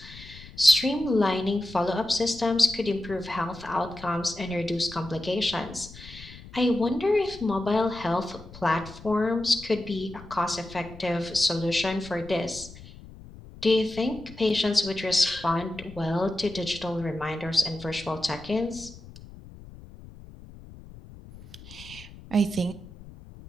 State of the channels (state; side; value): noise; left; rumble, 18 dB below the sound